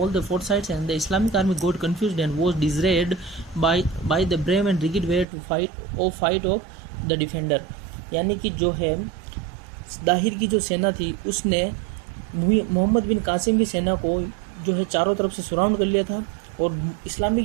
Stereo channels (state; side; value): drops out; left; at 5.2 s